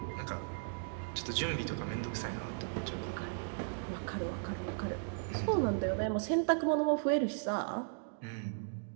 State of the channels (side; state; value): left; silent; digital silence